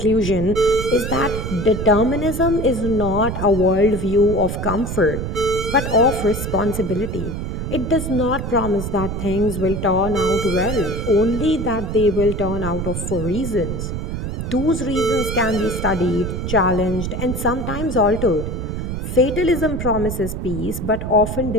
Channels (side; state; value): right; noise; rumble, 4 dB below the sound